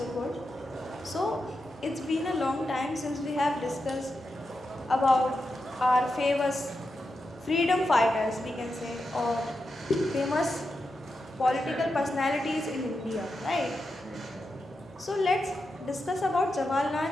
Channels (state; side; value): normal; both; correlation 0.88